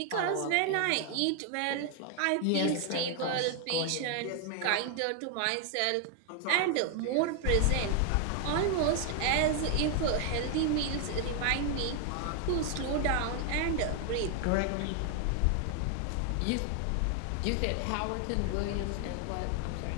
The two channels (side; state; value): both; different; correlation 0.00